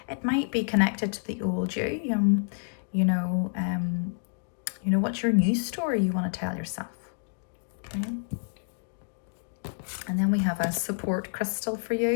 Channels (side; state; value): right; silent; digital silence